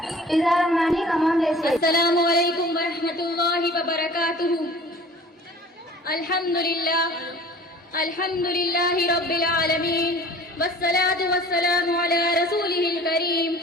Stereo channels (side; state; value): both; normal; correlation 0.46